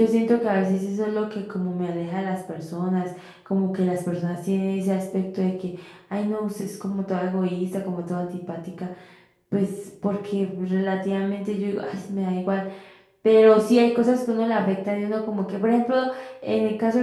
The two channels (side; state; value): both; identical; correlation 1.00